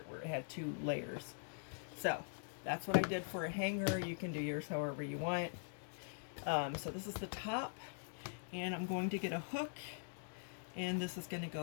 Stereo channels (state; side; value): silent; right; digital silence